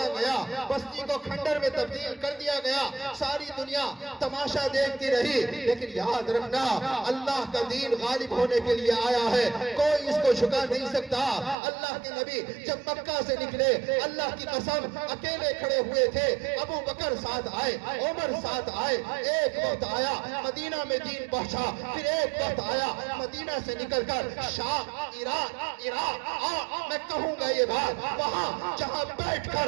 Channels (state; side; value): drops out; left; at 11.6 s